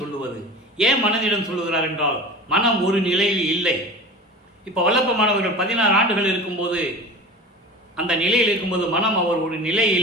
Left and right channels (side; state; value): both; normal; correlation 0.35